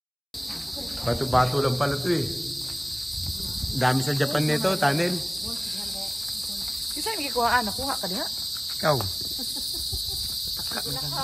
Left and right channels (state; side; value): identical; both; correlation 1.00